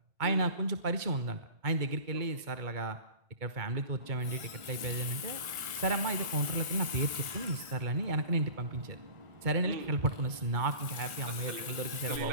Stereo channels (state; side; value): late; left; 1.4 ms